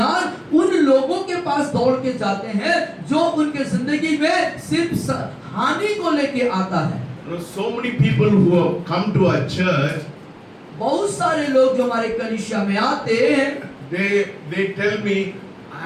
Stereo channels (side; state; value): both; identical; correlation 1.00